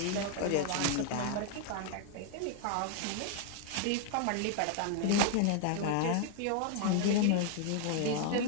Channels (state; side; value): different; both; correlation 0.00